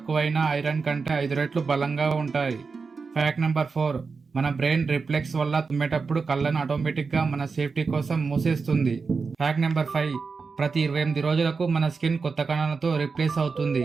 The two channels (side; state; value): left; quieter; 4.8 dB